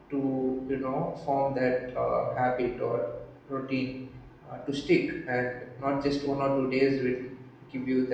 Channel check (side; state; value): both; identical; correlation 1.00